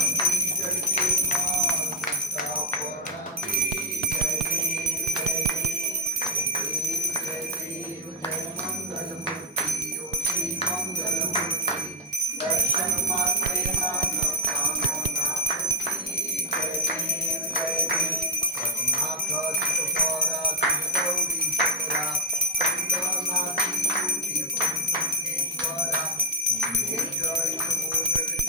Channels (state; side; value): normal; both; correlation 0.01